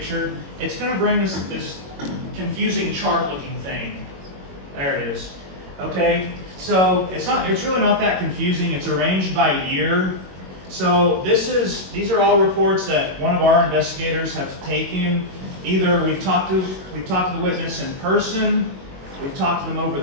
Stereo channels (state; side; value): late; left; 21 ms